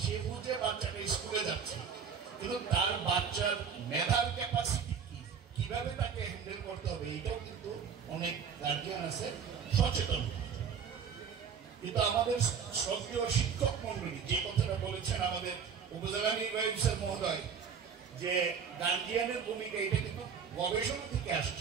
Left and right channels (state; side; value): quieter; left; 6.7 dB